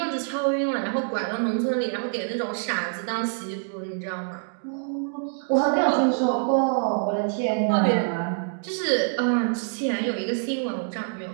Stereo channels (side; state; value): left; silent; digital silence